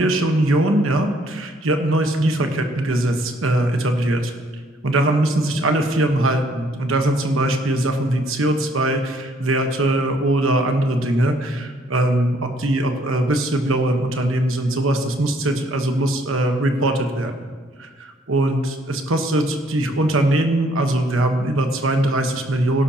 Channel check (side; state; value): both; normal; correlation 0.65